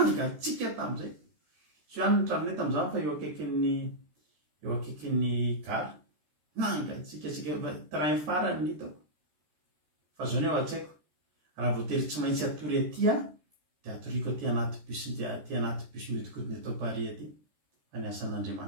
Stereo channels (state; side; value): late; left; 13 ms